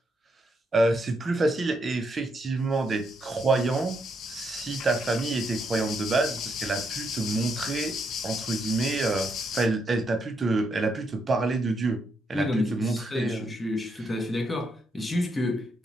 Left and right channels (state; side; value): normal; both; correlation 0.78